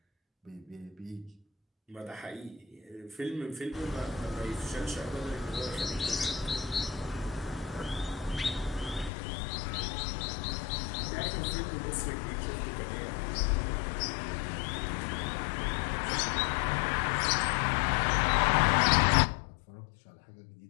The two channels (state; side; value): drops out; right; at 9.1 s